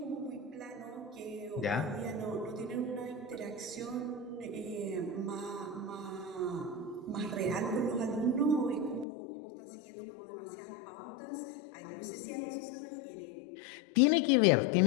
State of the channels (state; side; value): drops out; right; at 9.1 s